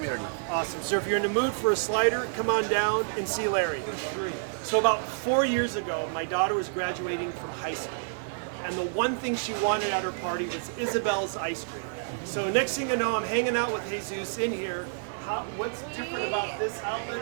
Awesome. So if you're in the mood for a slider, come on down and see Larry. So about 4 years ago, my daughter was graduating from high school. And the one thing she wanted at her party was Isabel's ice cream. So next thing I know, I'm hanging out with Jesus in here. What's different about this outlet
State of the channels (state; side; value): silent; left; digital silence